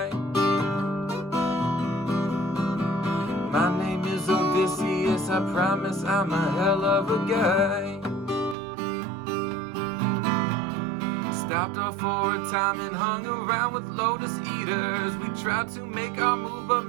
My name is Odysseus, I promise I'm a hell of a guy. Stopped off for a time and hung around with lotus eaters. We tried to make our move, but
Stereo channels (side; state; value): left; drops out; at 8.6 s